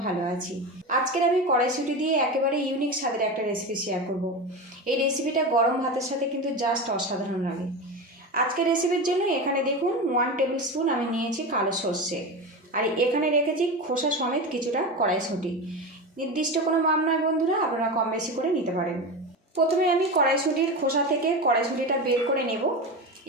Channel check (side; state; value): both; normal; correlation 0.23